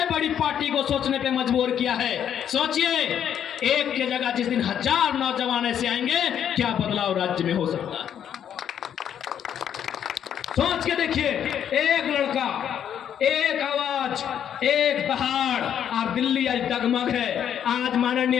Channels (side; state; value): right; quieter; 9.3 dB